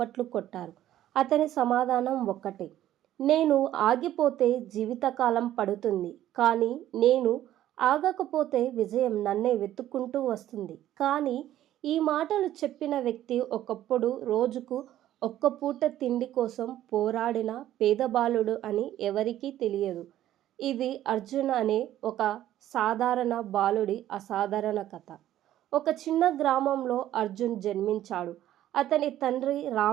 కొట్టారు. అతని సమాధానం ఒక్కటే. నేను ఆగిపోతే జీవితకాలం పడుతుంది. కానీ నేను ఆగకపోతే విజయం నన్నే వెతుక్కుంటూ వస్తుంది. కానీ ఈ మాటలు చెప్పిన వ్యక్తి ఒకప్పుడు రోజుకు ఒక్క పూట తిండి కోసం పోరాడిన పేద బాలుడు అని ఎవరికీ తెలియదు. ఇది అర్జున్ అనే ఒక సాధారణ బాలుడి అసాధారణ కథ. ఒక చిన్న గ్రామంలో అర్జున్ జన్మించాడు. అతని తండ్రి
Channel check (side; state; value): left; quieter; 12.8 dB